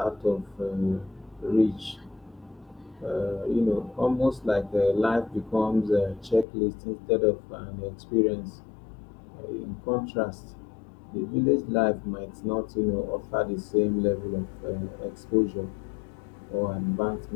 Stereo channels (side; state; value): right; drops out; at 6.5 s